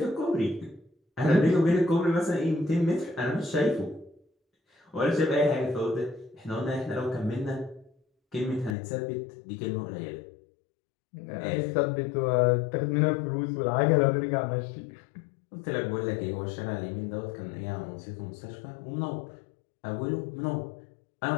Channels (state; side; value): drops out; right; at 8.8 s